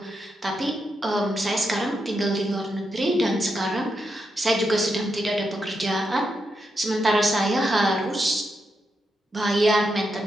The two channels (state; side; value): normal; both; correlation 0.84